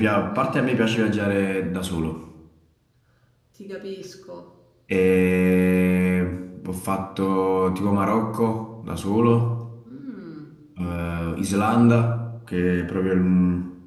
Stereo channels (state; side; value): identical; both; correlation 1.00